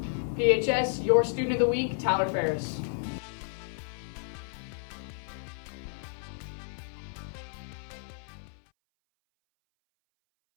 PHS, your student of the week, Tyler Ferris.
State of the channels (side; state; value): right; silent; 57 dB below the other